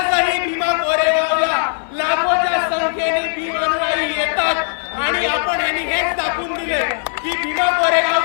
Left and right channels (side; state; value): right; silent; 59 dB below the other